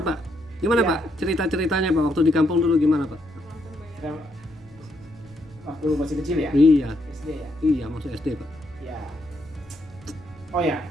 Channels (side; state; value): left; noise; rumble, 28 dB below the sound